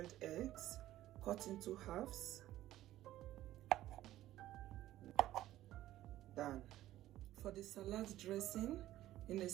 eggs, cut into halves, done. For the salad dressing, in a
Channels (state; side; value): quieter; left; 14.3 dB